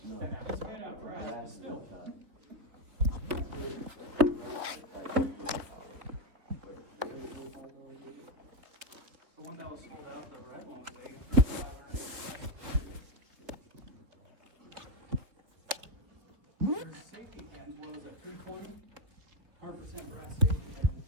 sent out. It's made out of brass, but still. The one that was sold out, the red one was $8,500. There's safety pins, what was it, 320? 100% brass safety pin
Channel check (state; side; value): late; left; 3.9 ms